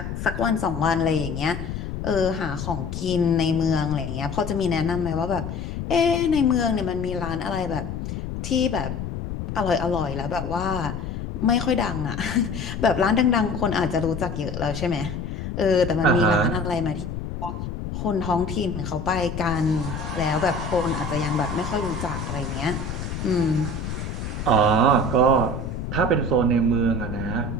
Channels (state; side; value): noise; left; rumble, 6 dB below the sound